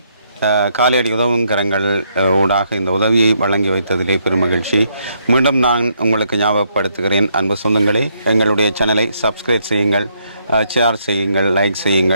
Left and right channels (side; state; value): both; inverted; correlation -0.74